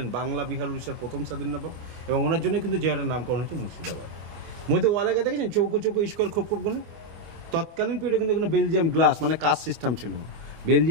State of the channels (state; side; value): late; left; 25 ms